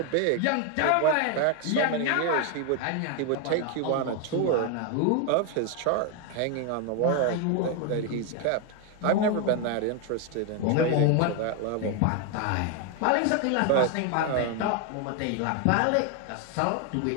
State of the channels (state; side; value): different; both; correlation 0.01